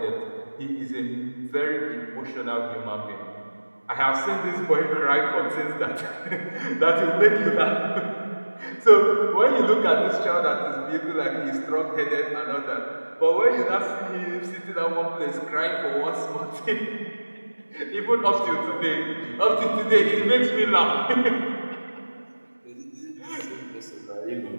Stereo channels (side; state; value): both; inverted; correlation -1.00